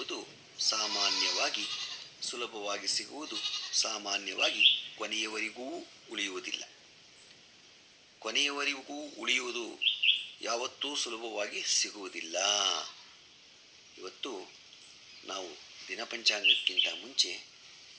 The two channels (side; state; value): both; identical; correlation 1.00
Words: ಸಾಮಾನ್ಯವಾಗಿ, ಸುಲಭವಾಗಿ ಸಿಗುವುದು ಸಾಮಾನ್ಯವಾಗಿ ಕೊನೆಯವರೆಗೂ ಉಳಿಯುವುದಿಲ್ಲ. ಕೊನೆಯವರೆಗೂ ಉಳಿಯುವುದು ಯಾವತ್ತೂ ಸುಲಭವಾಗಿ ಸಿಗುವುದಿಲ್ಲ. ಇವತ್ತು ನಾವು ದಿನಪಂಚಾಂಗಕ್ಕಿಂತ ಮುಂಚೆ